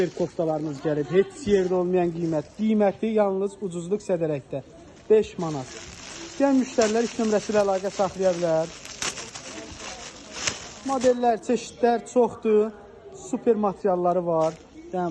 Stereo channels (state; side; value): identical; both; correlation 1.00